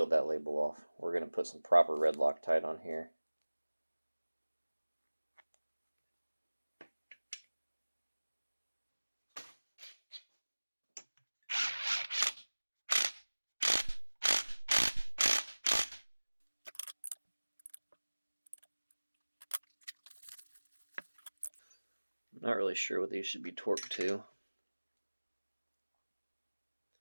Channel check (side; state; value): both; inverted; correlation -1.00